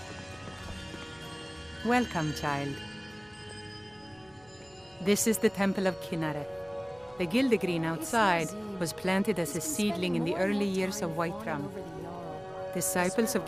Welcome, child. This is the Temple of Kinnareth. The Gildegreen outside was planted as a seedling in the early years of Whiterun. Disciples of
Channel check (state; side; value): noise; right; hum, 30 dB below the sound